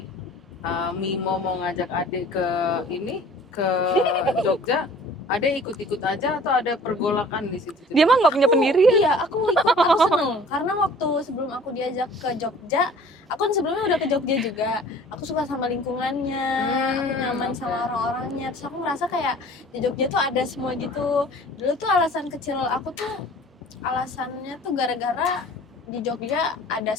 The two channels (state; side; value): normal; both; correlation 0.48